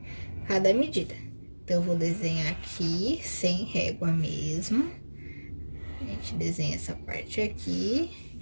cada medida. Então, eu vou desenhar aqui, sem régua mesmo. A gente desenha essa parte aqui, a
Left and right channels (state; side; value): inverted; both; correlation -1.00